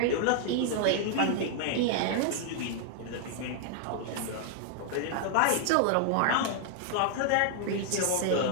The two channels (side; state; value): both; different; correlation 0.00